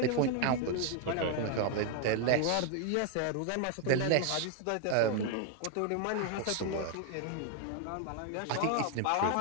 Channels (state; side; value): different; both; correlation 0.00